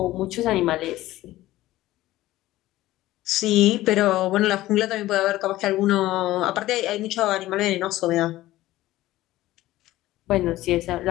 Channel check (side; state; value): right; quieter; 16.2 dB